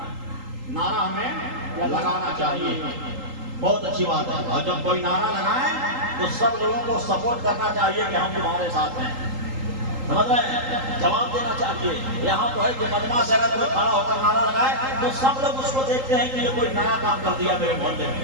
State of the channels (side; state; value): left; late; 3.8 ms